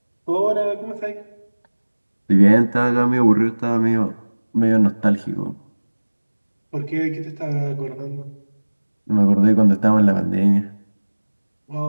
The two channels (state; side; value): inverted; both; correlation -1.00